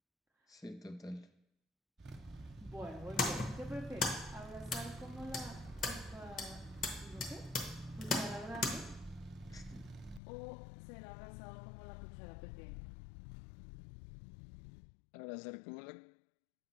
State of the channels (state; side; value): drops out; right; at 10.2 s